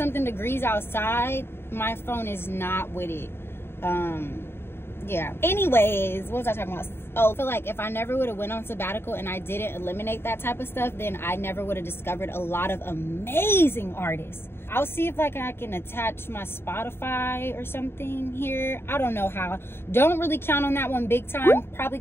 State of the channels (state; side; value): late; right; 0.11 ms